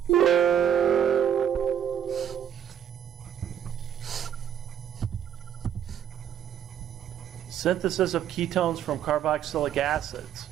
Synthesis of ketones from carboxylic acids.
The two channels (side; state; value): left; quieter; 9.5 dB